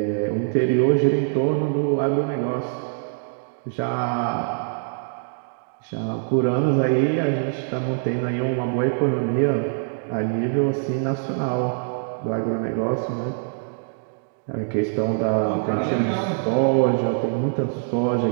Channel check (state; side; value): silent; left; digital silence